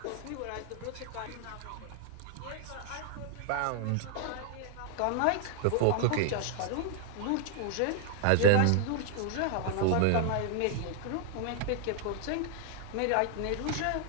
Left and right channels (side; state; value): both; different; correlation -0.01